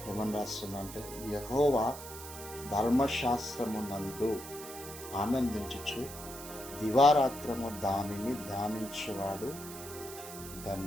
ఏమని రాస్తుందంటే, యెహోవా ధర్మశాస్త్రమునందు ఆనందించుచు దివారాత్రము దానిని ధ్యానించేవాడు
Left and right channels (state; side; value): noise; right; hiss, 12 dB below the sound